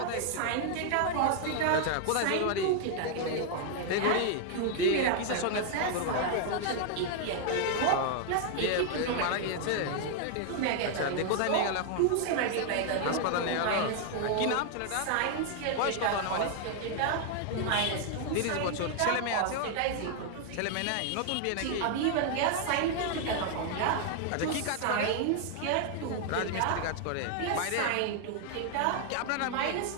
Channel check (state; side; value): different; both; correlation 0.00